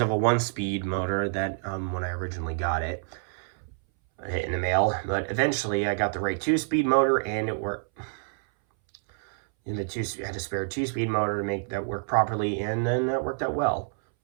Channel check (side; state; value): left; silent; 60 dB below the other